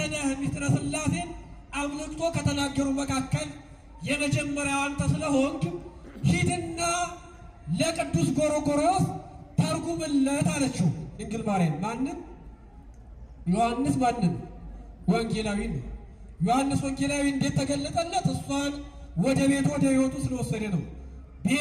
ነህ ምስጢረ ሥላሴን አብልጦ ከተናገሩ መካከል የመጀመሪያው አንተ ስለሆንክ ሂድና ለቅዱስ ጎርጎርዮስ ተርጉምለት አለችው። ድንግል ማርያም ማንን? ዮሐንስ ማንን? ወንጌላዊ ነው። ዮሐንስ ወንጌላዊ እንዴት ተገለጠለት? እሷን ወደ ቤት ወደ ሕይወቱ ስለወሰደ ነው።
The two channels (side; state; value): both; identical; correlation 1.00